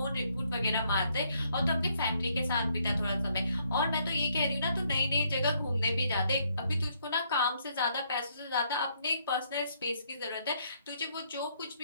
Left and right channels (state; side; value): inverted; both; correlation -0.71